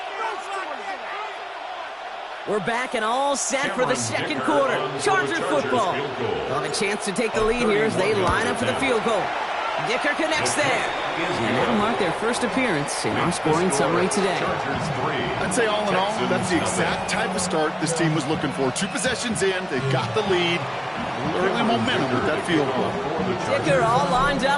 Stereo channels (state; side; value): identical; both; correlation 1.00